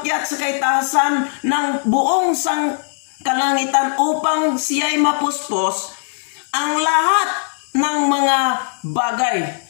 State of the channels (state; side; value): silent; right; digital silence